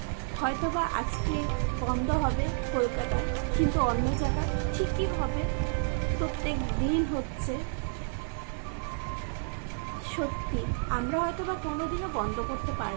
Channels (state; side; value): silent; left; 58 dB below the other